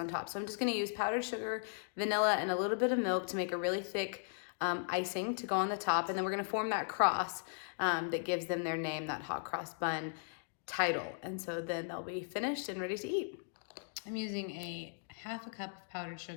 top. So I'm just gonna use powdered sugar, vanilla, and a little bit of milk to make a really thick icing to go on the top, and then we're gonna form that cross that gives them their name, that hot cross bun title. And so then they'll be finished and ready to eat. I'm using a half a cup of powdered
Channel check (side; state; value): right; silent; digital silence